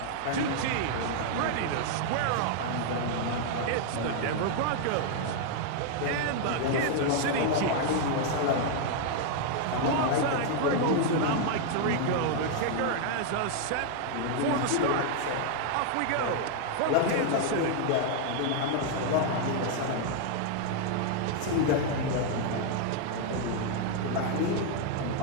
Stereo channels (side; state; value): both; different; correlation 0.00